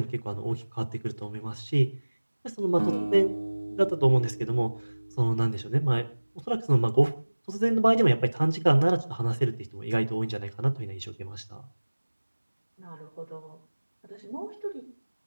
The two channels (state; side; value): inverted; both; correlation -1.00